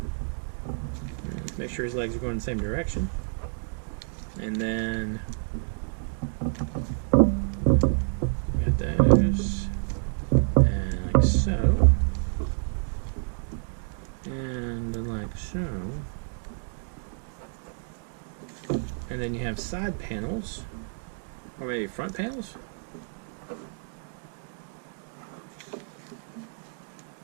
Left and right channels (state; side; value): silent; left; 59 dB below the other